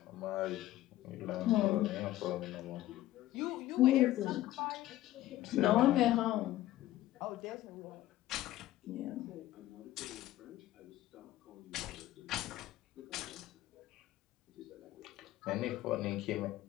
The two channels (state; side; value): quieter; right; 15.1 dB